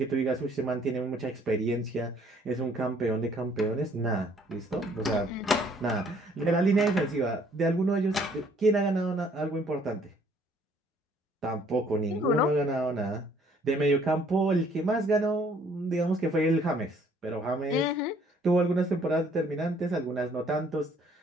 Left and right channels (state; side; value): normal; both; correlation 0.61